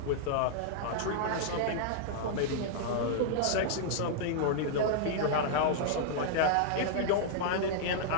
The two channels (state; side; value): different; both; correlation -0.01